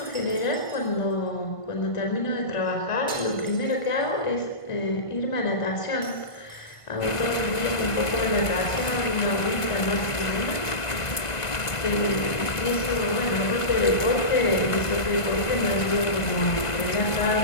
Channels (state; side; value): late; right; 1.9 ms